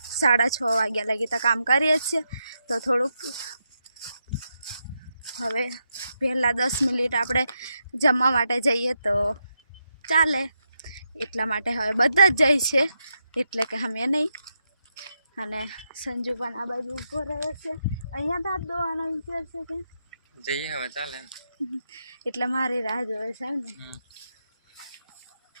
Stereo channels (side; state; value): both; inverted; correlation -0.84